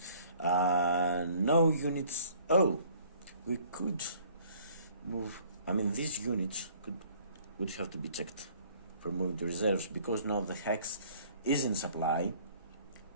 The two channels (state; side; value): inverted; both; correlation -0.55